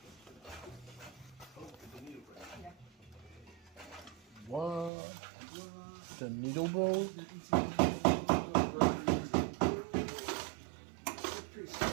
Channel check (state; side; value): drops out; left; at 4.9 s